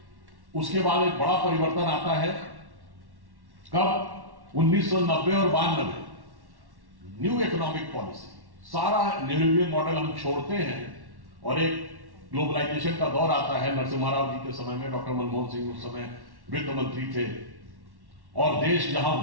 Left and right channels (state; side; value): late; left; 1.1 ms